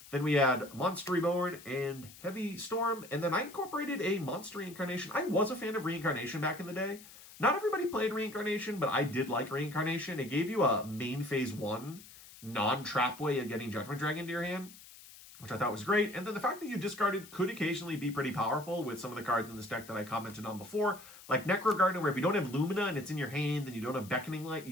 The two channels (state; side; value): noise; left; hiss, 19 dB below the sound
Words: Then we had Monster Reborn and Heavy Storm, and then I incorporated a Monster Reincarnation. I was a fan of Reincarnation back in the day. Not everybody played Reincarnation, but I did like Reincarnation. It gave you a main phase 1 non-trap way of getting Judgment Dragon into your hand, which I thought was great. And then the fact that you discarded could occasionally be pretty powerful with some of the cards in this deck that I commented on before, like Necro Garden, where if you don't have Lumina and it's in your hand and you don't have Beckoning Light,